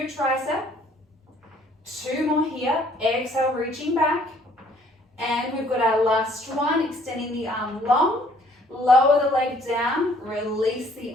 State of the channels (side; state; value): both; normal; correlation 0.60